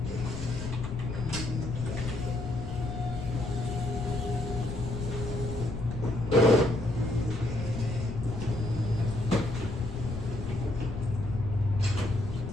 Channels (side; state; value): left; noise; rumble, 7 dB below the sound